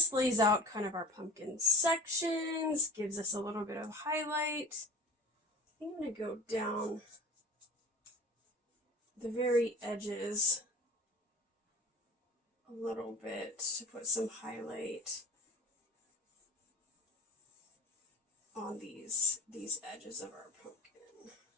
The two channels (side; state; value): both; normal; correlation 0.39